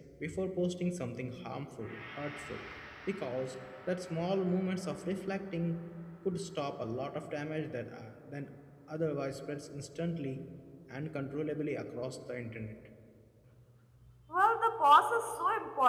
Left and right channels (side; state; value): both; identical; correlation 1.00